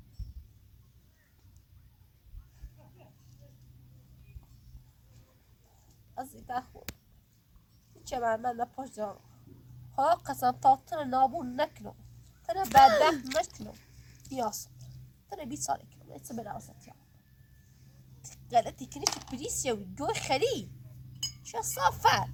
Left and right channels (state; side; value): identical; both; correlation 1.00